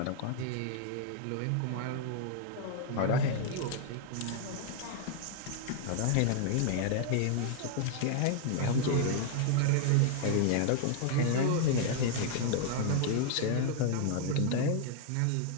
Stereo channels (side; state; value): both; different; correlation 0.00